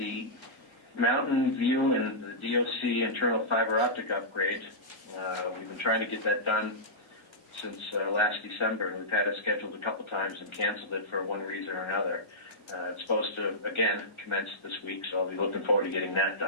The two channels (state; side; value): late; right; 1.4 ms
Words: Mountain View and the DOC internal fiber optic upgrade. We've been trying to get that done since last December. We've had it scheduled a couple times and canceled it for one reason or another. It's supposed to, again, commence this week, so I'll be looking forward to getting that